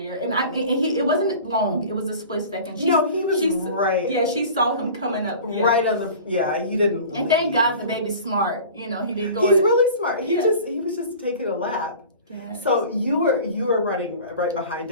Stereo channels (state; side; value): inverted; both; correlation -0.40